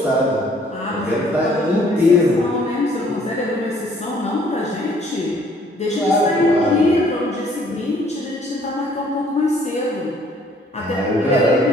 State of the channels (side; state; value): both; normal; correlation 0.61